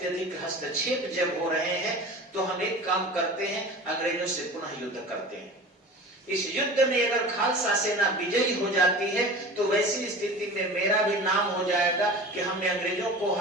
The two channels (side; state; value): both; normal; correlation 0.37